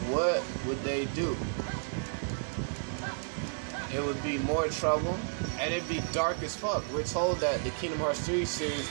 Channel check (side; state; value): left; silent; digital silence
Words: what would they do? It would be more trouble, and it'd be dark as fuck. We're told that the Kingdom Hearts 3 series